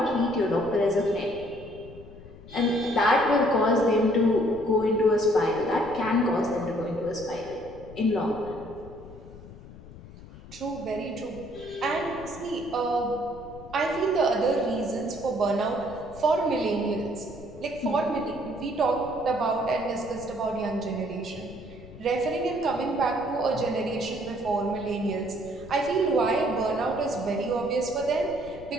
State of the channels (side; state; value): left; noise; rumble, 17 dB below the sound